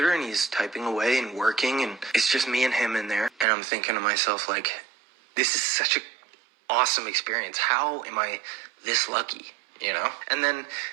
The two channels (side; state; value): left; drops out; at 3.5 s